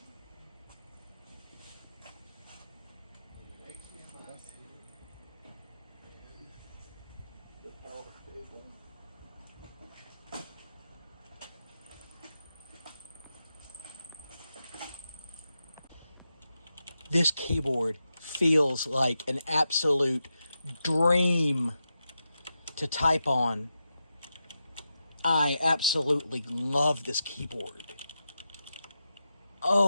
This keyboard feels like an absolute dream to type on. I absolutely love this keyboard.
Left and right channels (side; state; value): both; inverted; correlation -0.88